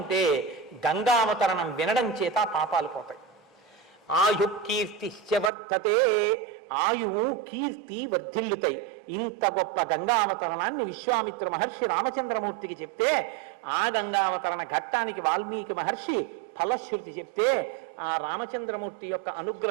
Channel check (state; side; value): drops out; left; at 5.5 s